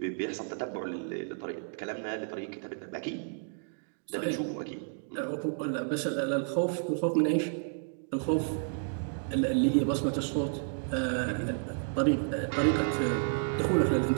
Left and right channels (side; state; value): left; silent; digital silence